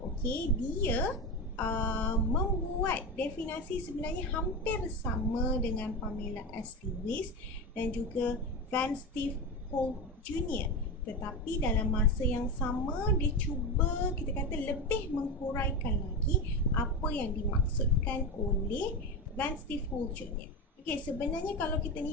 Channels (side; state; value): both; normal; correlation 0.19